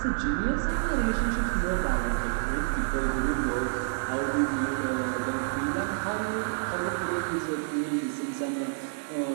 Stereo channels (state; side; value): silent; left; digital silence